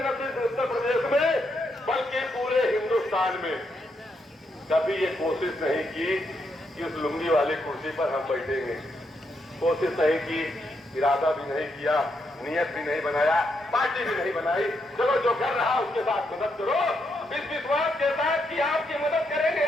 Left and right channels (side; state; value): both; normal; correlation 0.79